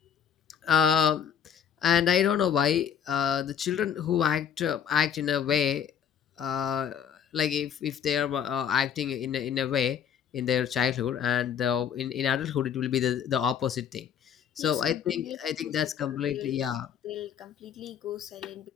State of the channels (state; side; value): quieter; right; 8.3 dB